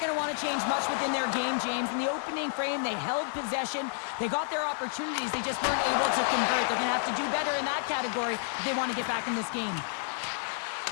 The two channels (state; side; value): silent; right; 58 dB below the other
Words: going to want to change much within their game, James. In the opening frame, they held possession. They got their opportunities. They just weren't able to convert. They're going to have to do better in that category if they want to get back in this game.